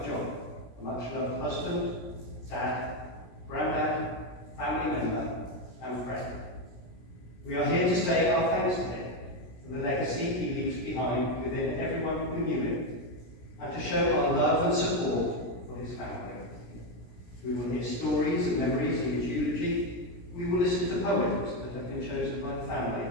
Jock, a much-loved husband, dad, granddad, family member, and friend. We are here to say our thanks to him for the legacy he leaves behind within everyone who knew him, and to show our love and support for his family. We will hear stories and memories in his eulogy. We will listen to poems that have been chosen by the family,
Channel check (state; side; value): late; right; 17 ms